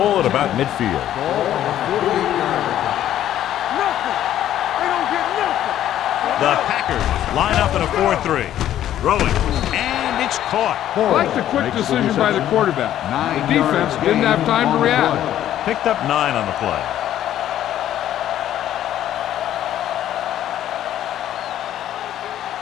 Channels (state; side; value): quieter; right; 11.8 dB